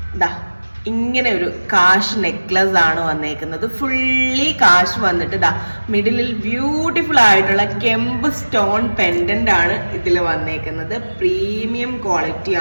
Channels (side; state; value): both; inverted; correlation -1.00